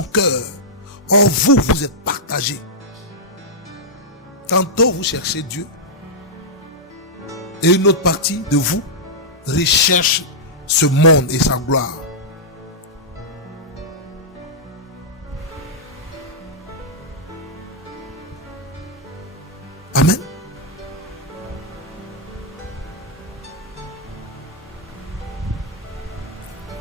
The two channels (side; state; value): both; normal; correlation -0.09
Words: cœur, en vous, vous êtes partagés. Tantôt vous cherchez Dieu, et une autre partie de vous recherche ce monde et sa gloire. Amen.